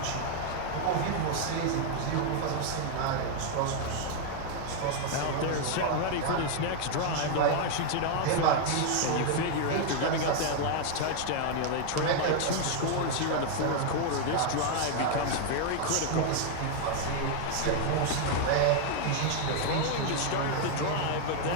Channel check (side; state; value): both; different; correlation 0.00